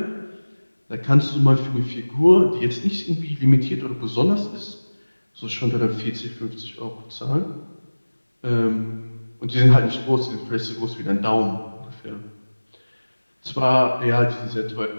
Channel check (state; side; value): inverted; both; correlation -1.00